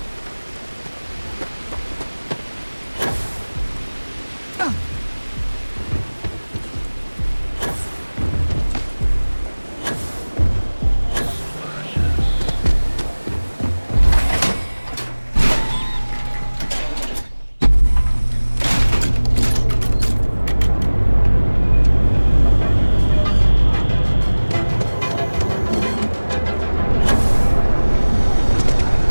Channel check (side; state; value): both; inverted; correlation -1.00